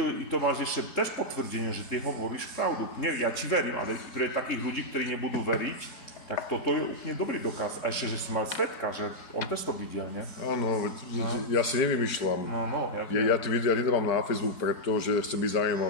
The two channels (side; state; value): right; late; 4.1 ms